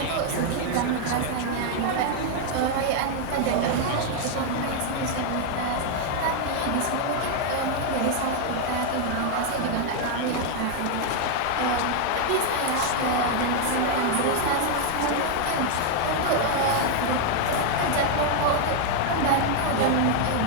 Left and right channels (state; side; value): different; both; correlation 0.00